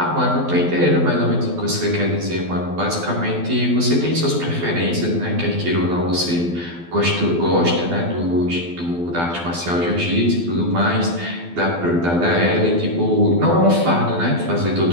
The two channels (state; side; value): late; left; 12 ms